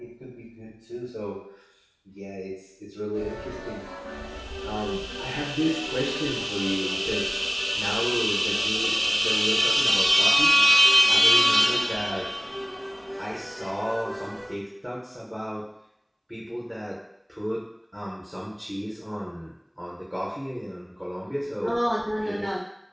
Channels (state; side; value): identical; both; correlation 1.00